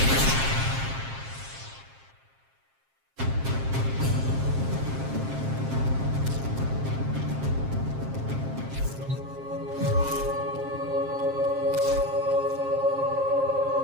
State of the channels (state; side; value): late; left; 7.5 ms